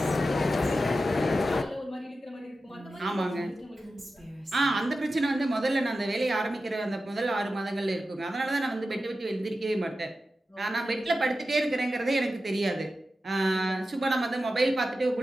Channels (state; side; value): normal; both; correlation 0.92